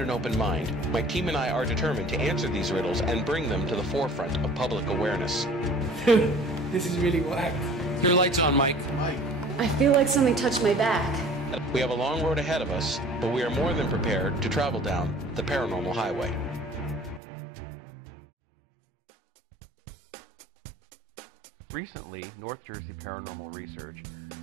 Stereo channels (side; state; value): left; drops out; at 17.2 s